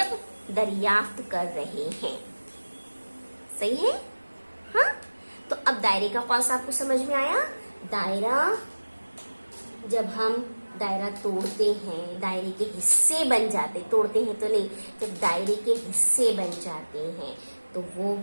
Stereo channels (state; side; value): inverted; both; correlation -1.00